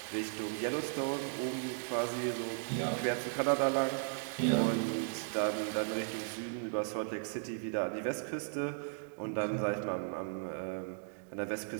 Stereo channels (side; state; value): left; silent; digital silence